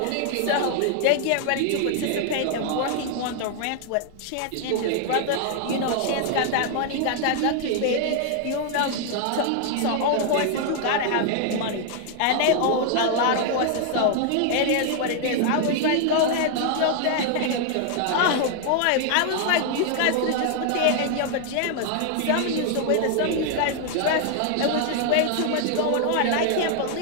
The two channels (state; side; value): different; both; correlation 0.00